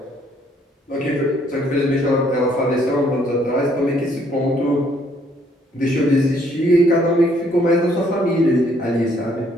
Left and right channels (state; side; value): normal; both; correlation 0.66